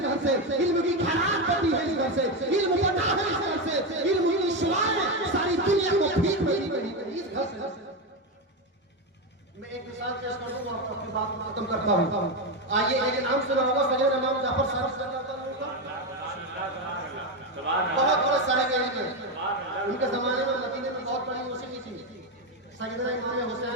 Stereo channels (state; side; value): normal; both; correlation 0.11